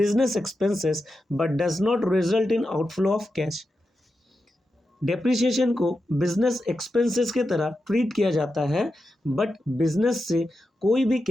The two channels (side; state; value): both; normal; correlation 0.89